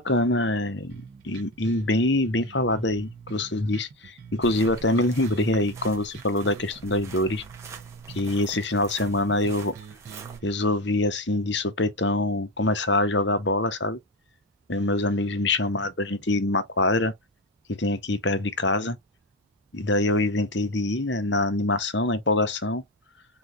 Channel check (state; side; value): normal; both; correlation 0.17